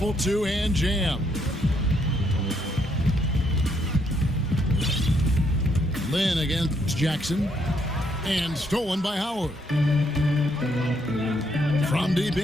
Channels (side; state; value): both; normal; correlation 0.73